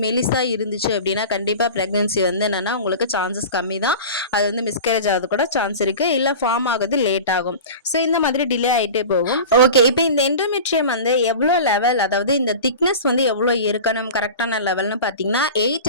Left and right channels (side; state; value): both; inverted; correlation -0.34